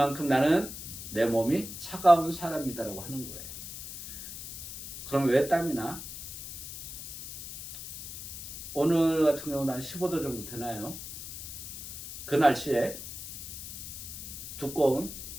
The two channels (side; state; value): left; noise; hiss, 9 dB below the sound